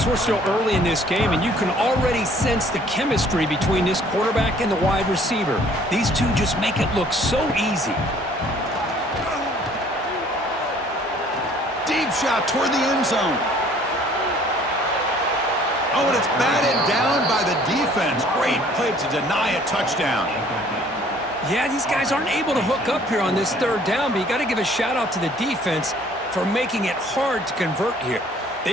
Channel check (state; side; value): normal; both; correlation 0.57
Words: we're still early in this game, and you can already sense the chemistry between this quarterback and the wide receiver. These two just make it look so easy. Deep shot toward the end zone. Oh, and it's batted down by the defense. Great play to deny a touchdown. Yeah, these guys aren't able to hook up here on this 3rd down, but you got to give a shout-out to the defense for making it hard to convert here.